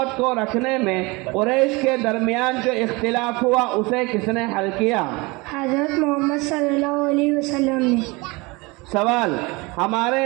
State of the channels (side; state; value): left; quieter; 25.2 dB